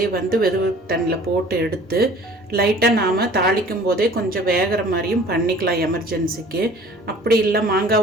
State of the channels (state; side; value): normal; both; correlation 0.49